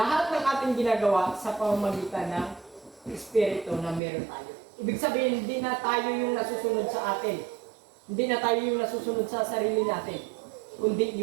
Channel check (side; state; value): left; drops out; at 4.0 s